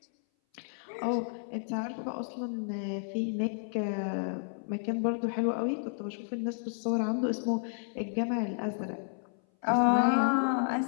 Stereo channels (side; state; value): right; silent; 57 dB below the other